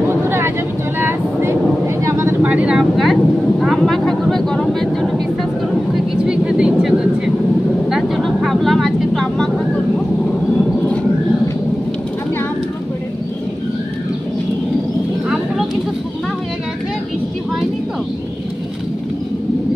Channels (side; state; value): both; normal; correlation 0.96